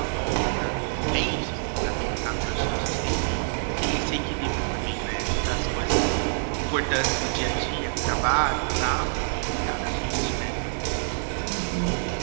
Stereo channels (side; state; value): left; silent; digital silence